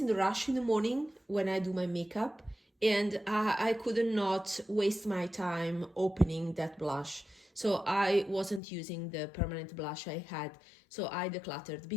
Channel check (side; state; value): right; drops out; at 8.6 s